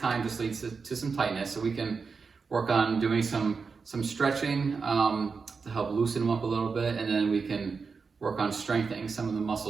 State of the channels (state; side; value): quieter; left; 5.0 dB